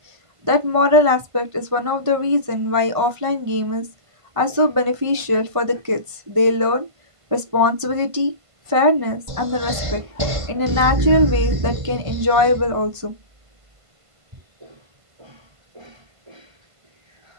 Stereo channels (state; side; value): late; left; 1.5 ms